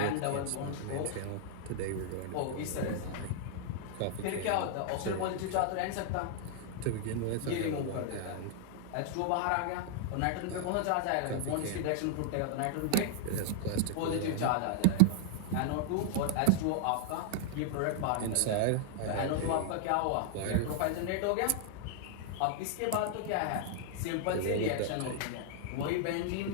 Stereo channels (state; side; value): different; both; correlation -0.01